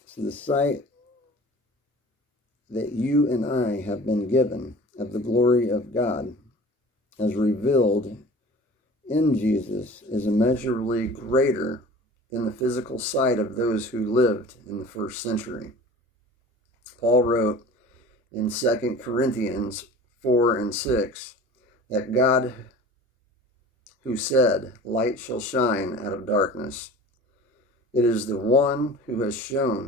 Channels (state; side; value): normal; both; correlation 0.41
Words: So the sight that you and I have been given of the glory of God as revealed in Jesus is immeasurably greater than the physical sight of those who lived in the first century. Paul wrote in 2 Corinthians 4 and 6 that God, who said, light shall shine out of darkness, it is the one who has